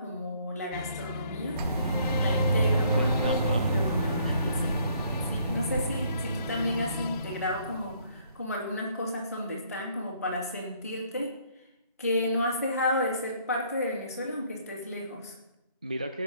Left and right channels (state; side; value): inverted; both; correlation -0.64